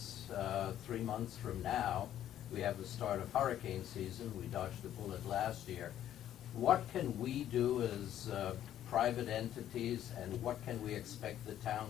3 months from now, we have the start of hurricane season. We dodged a bullet last year. What can we do as private entities, and what can we expect the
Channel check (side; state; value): right; quieter; 11.4 dB